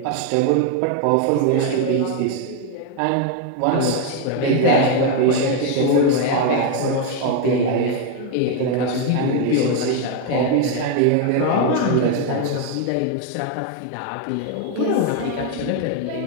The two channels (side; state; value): both; different; correlation 0.01